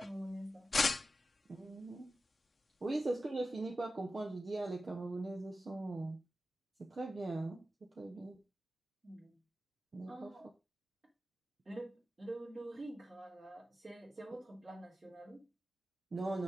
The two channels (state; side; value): normal; both; correlation 0.93